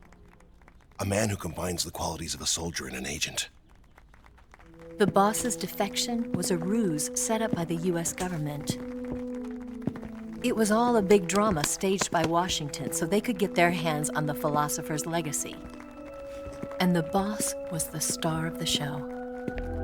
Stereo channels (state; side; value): identical; both; correlation 1.00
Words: A man who combines the qualities of a soldier and an agent. The boss's defection was a ruse set up by the US government. It was all a big drama staged by Washington so they could get their hands on the philosopher's legacy. And the boss was the star of the show.